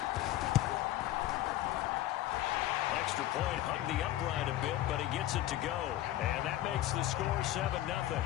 Extra point hugged the upright a bit, but he gets it to go. And that makes the score 7-0.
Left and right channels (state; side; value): quieter; right; 14.2 dB